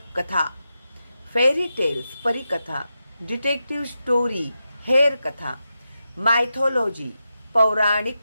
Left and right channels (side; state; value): both; inverted; correlation -0.89